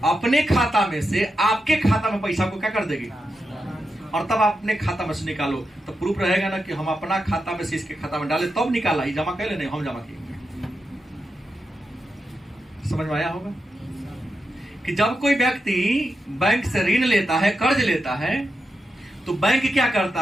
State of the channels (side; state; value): both; normal; correlation 0.87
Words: अपने खाता में से आपके खाता में पैसा को क्या कर देगी और तब आप अपने खाता में से निकालो। तो प्रूफ रहेगा ना कि हम अपना खाता में से इसके खाता में डाले तब निकाला, ये जमा कर ले, नहीं हम जमा किए। समझ में आया होगा कि जब कोई व्यक्ति बैंक से ऋण लेता है, कर्ज लेता है, तो बैंक क्या